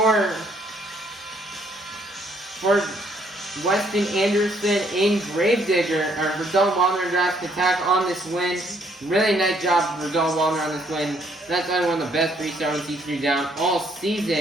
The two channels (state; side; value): normal; both; correlation 0.68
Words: Weston Anderson in Gravedigger, or for Dalton Wilder in Jurassic Attack on this win. Really nice job for Dalton Wilder on this win. That's probably one of the best freestyle T3 down all